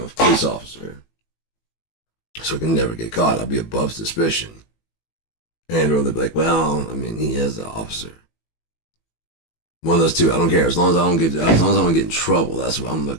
police officer. So I can never get caught. I'll be above suspicion. And or they'll be like, well, I mean, he is an officer. One of those two. I don't care. As long as I don't get in trouble, that's what I'm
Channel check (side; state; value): right; late; 18 ms